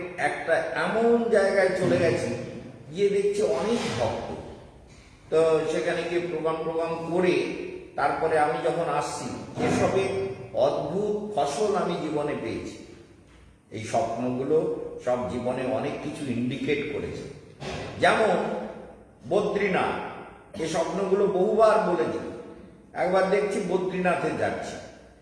একটা এমন জায়গায় চলে গেছি, গিয়ে দেখছি অনেক ভক্ত। তো সেখানে গিয়ে প্রোগ্রাম করে তারপরে আমি যখন আসছি, এসবের অদ্ভুত ফসল আমি জীবনে পেয়েছি। এই স্বপ্নগুলো সব জীবনে অনেক কিছু ইন্ডিকেট করেছে। যেমন বদ্রীনাথ, এই স্বপ্নগুলো বহুবার বলেছি। একবার দেখছি বদ্রীনাথে যাচ্ছি,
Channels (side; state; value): both; identical; correlation 1.00